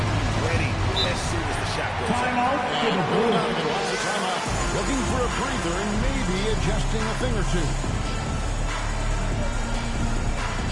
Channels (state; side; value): identical; both; correlation 1.00